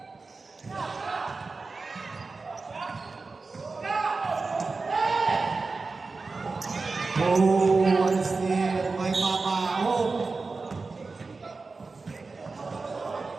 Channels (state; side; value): quieter; left; 4.0 dB